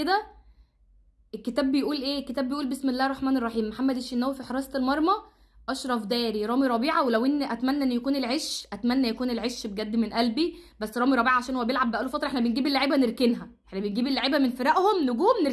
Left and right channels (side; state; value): both; identical; correlation 1.00